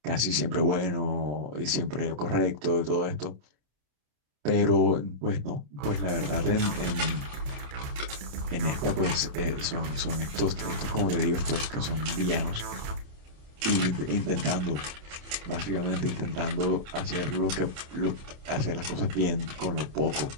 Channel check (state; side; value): late; left; 27 ms